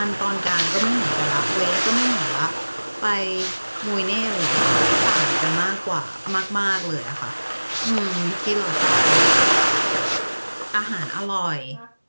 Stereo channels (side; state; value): both; inverted; correlation -1.00